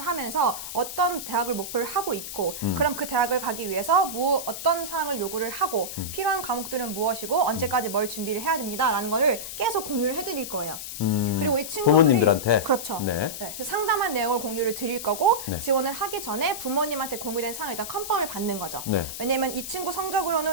하면서 어떤 대학을 목표를 하고 있고 그럼 그 대학을 가기 위해서 어떤 사항을 요구를 하고 필요한 과목들은 무엇이고 언제까지 뭘 준비를 해야 됩니다라는 거를 계속 공유를 해드릴 거예요. 그리고 이 친구들이 부모님들한테? 그렇죠. 네. 그래서 상담한 내용을 공유를 드릴 거고 네. 지원을 하기 전에 부모님한테 공유된 사항을 일단 컨펌을 받는 거죠. 네. 왜냐면 이 친구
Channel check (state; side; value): noise; left; hiss, 8 dB below the sound